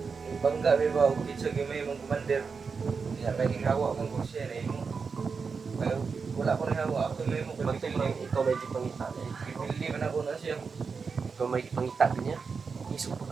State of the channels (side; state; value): left; quieter; 5.2 dB